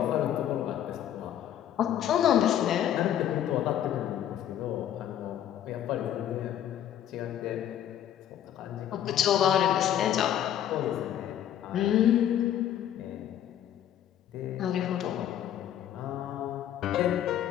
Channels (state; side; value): quieter; right; 10.8 dB